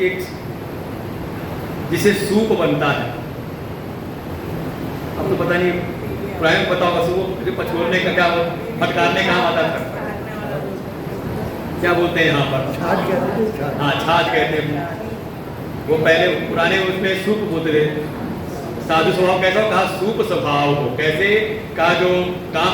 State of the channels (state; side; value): identical; both; correlation 1.00